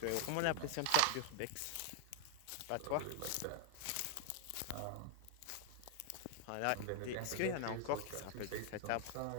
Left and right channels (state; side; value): different; both; correlation 0.00